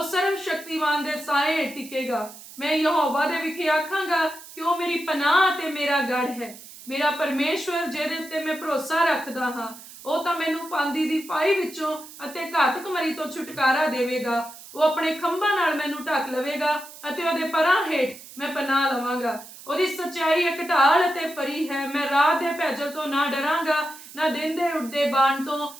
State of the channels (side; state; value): right; noise; hiss, 17 dB below the sound